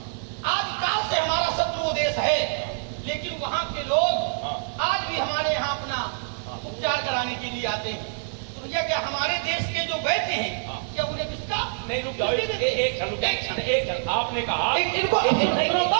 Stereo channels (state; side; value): silent; left; 55 dB below the other